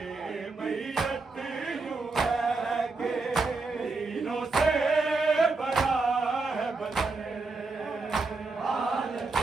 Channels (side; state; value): left; quieter; 3.8 dB